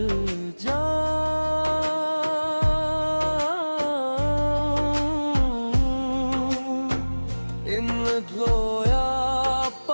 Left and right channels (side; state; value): both; inverted; correlation -1.00